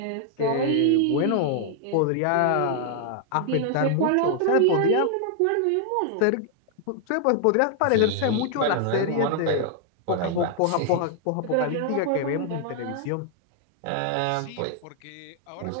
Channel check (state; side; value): different; both; correlation 0.00